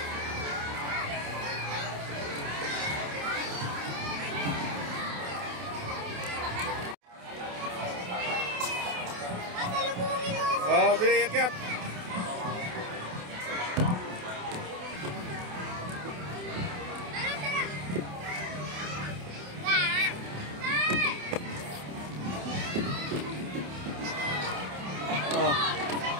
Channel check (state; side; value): late; left; 28 ms